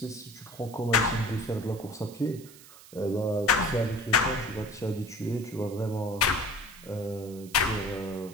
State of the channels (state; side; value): noise; right; hiss, 20 dB below the sound